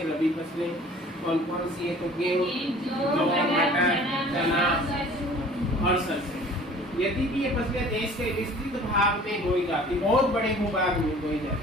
रबी फसलें कौन कौन सी है? तो गेहूं, जौ, मटर, चना और सरसों। यदि भी ये फसलें देश के विस्तृत भाग में बोई जाती, बहुत बड़े भूभाग में बोई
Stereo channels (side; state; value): both; normal; correlation 0.48